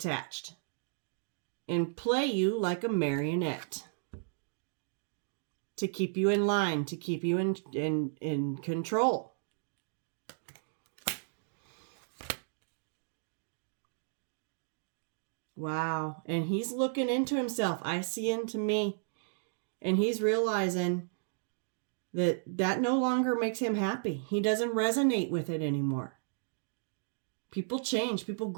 and play you like a marionette to keep you in line, to keep you in control. Wow. And he's looking into himself. I see into me. And he's realizing that no longer makes him happy. He doesn't resonate with it anymore. People change, people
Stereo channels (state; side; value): silent; left; digital silence